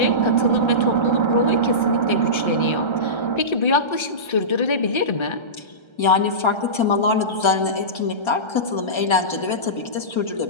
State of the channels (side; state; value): right; late; 1.3 ms